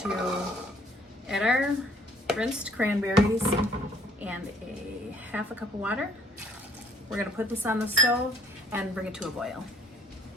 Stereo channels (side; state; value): both; normal; correlation 0.61